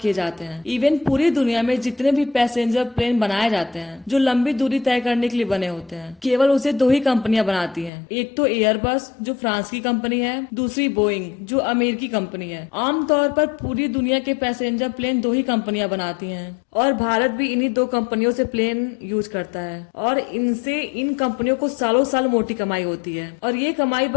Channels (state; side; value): drops out; right; at 7.9 s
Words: जाते हैं, इवन पूरी दुनिया में जितने भी पैसेंजर प्लेन बनाए जाते हैं जो लंबी दूरी तय करने के लिए बने होते हैं, केवल उसे दो ही कंपनियां बनाती हैं। एक तो एयरबस जो फ्रांस की कंपनी है, दूसरी बोइंग जो अमेरिकी कंपनी है। आमतौर पर पूरी दुनिया के पैसेंजर प्लेन दो ही कंपनियां बनाती हैं और भारत भी इन्हीं दो कंपनियों से प्लेन यूज करता है और इनसे इन कंपनियों को सालों साल मोटी कमाई होती है। और ये कमाई